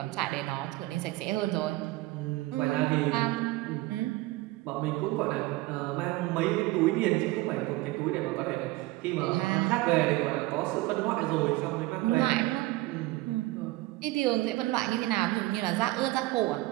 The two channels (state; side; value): quieter; left; 19.1 dB